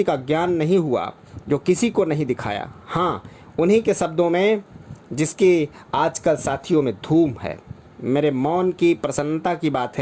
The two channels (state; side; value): identical; both; correlation 1.00